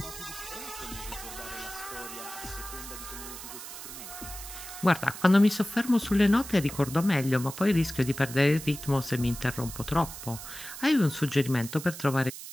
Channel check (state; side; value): noise; right; hiss, 11 dB below the sound